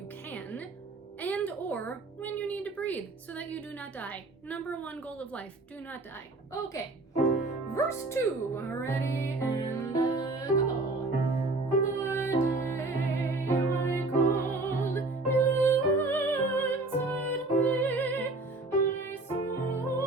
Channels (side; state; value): left; quieter; 3.1 dB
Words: can, and or when you need to breathe so that you do not die. Number 1 goal of life, do not die. Okay. Verse 2. Ready and go.